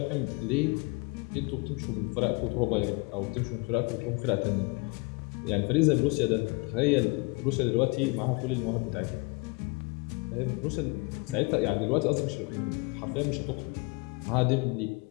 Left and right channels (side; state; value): right; quieter; 27.7 dB